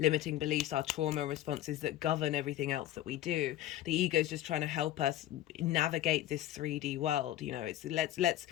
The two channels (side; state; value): right; quieter; 13.5 dB